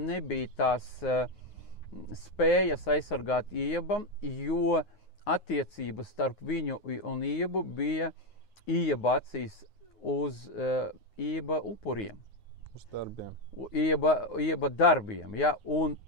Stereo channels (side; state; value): right; late; 9.5 ms